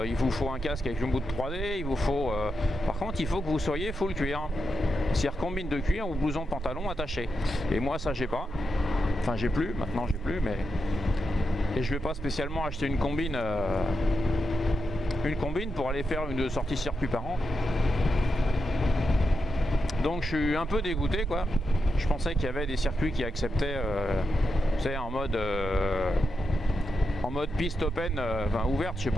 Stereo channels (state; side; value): normal; both; correlation 0.90